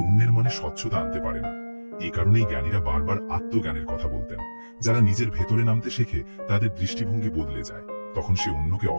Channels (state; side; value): inverted; both; correlation -1.00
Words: মনে স্বচ্ছতা আনতে পারে না। এই কারণেই জ্ঞানীরা বারবার আত্মজ্ঞানের কথা বলতেন। যারা নিজের ভেতরে নামতে শেখে, তাদের দৃষ্টিভঙ্গি বদলে যায়। তখন সে অন্যকে